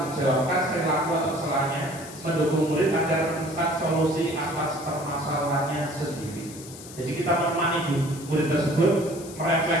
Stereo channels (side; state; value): left; noise; hiss, 16 dB below the sound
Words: perilaku atau kesalahannya, mendukung murid agar menemukan solusi atas permasalahannya sendiri. Jadi kita menemani murid tersebut